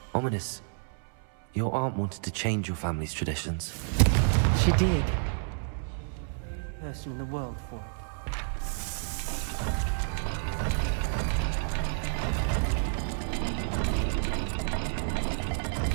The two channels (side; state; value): left; silent; 58 dB below the other